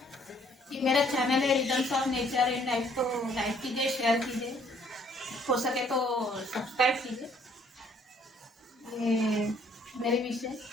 ये मेरा चैनल है rhythms of nature and life, तो लाइक कीजिए, शेयर कीजिए, हो सके तो सब्सक्राइब कीजिए। ये मेरी विश है,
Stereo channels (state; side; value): normal; both; correlation 0.63